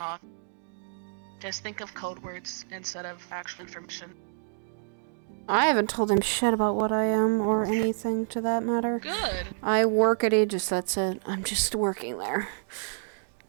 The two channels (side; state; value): left; silent; digital silence